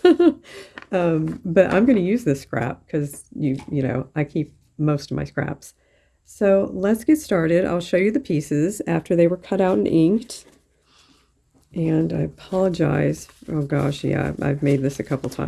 But I'm going to use this scrap because you know, I keep most of my scraps. So let's get started. I'll show you the pieces after they were cut out and inked. And I apologize. Oh gosh, yeah, I've made this a couple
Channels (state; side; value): identical; both; correlation 1.00